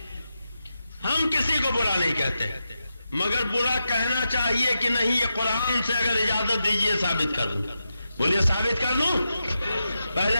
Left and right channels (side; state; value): both; inverted; correlation -0.88